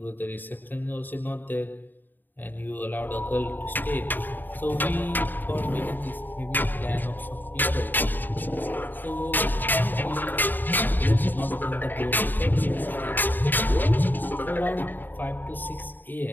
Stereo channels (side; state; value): right; late; 0.090 ms